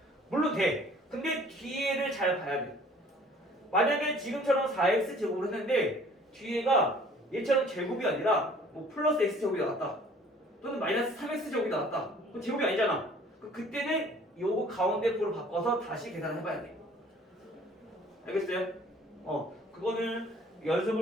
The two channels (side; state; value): both; normal; correlation 0.53